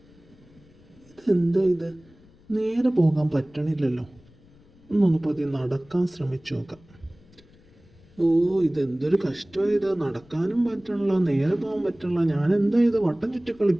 ഇതെന്താ ഇത്? നേരെ പോകാൻ പറ്റണില്ലല്ലോ. ഒന്നൊന്ന് പതിയെ നടക്കാൻ ശ്രമിച്ചു നോക്കാം. ഓ, ഇതെന്തൊരു കഷ്ടമാണ് ഇത്. നടക്കാനും പറ്റണില്ല, നേരെ പോകാൻ പറ്റണില്ല. ഞാൻ എന്താ ഇത് വട്ടം ചുറ്റി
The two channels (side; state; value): left; noise; rumble, 27 dB below the sound